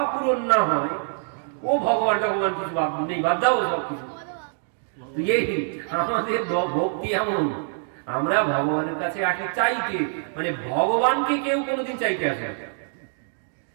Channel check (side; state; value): left; silent; digital silence